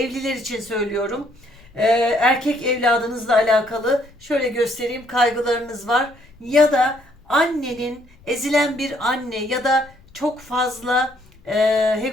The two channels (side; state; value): left; noise; rumble, 27 dB below the sound